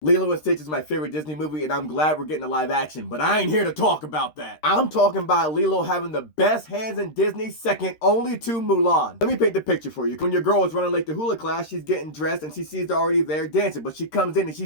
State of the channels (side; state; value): right; late; 13 ms